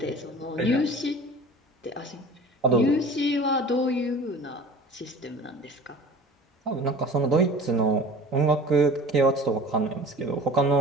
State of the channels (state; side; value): normal; both; correlation 0.42